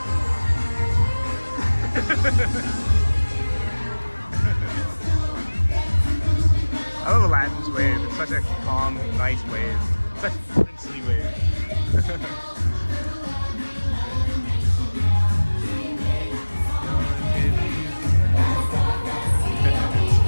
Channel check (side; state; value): both; inverted; correlation -1.00